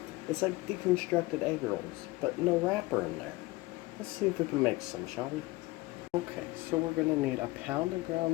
It's like deconstructed egg rolls, but no wrapper in there. Let's see if we can make some, shall we? Okay, so we're gonna need a pound of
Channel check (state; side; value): quieter; right; 20.9 dB